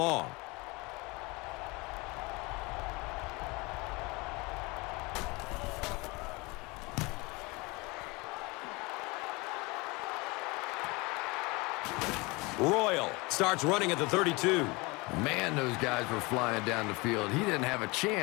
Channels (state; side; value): quieter; right; 25.4 dB